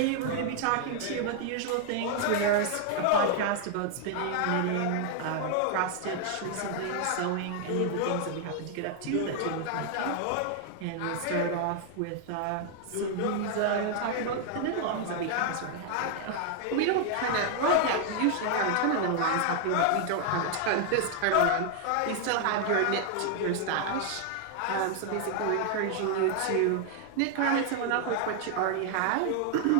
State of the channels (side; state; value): both; different; correlation 0.00